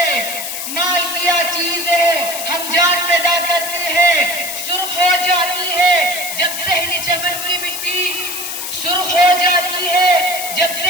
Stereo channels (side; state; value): left; noise; hiss, 6 dB below the sound